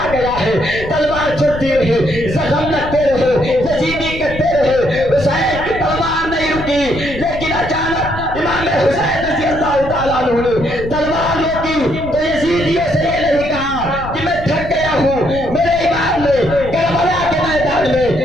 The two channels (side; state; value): left; noise; rumble, 10 dB below the sound